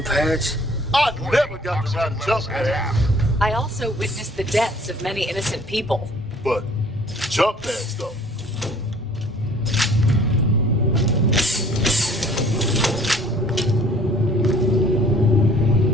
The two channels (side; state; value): both; normal; correlation 0.54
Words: pads? I never got to ride a jump pad, I also witnessed the deaths of many innocent people. but jump pads though.